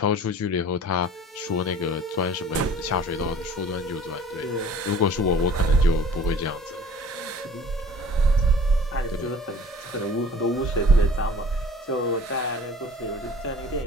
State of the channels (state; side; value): normal; both; correlation 0.47